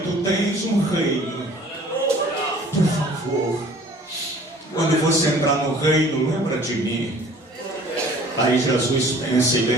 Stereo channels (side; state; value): both; normal; correlation 0.50